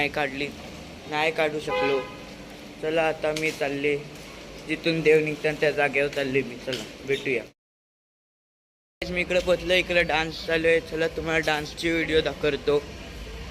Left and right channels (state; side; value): identical; both; correlation 1.00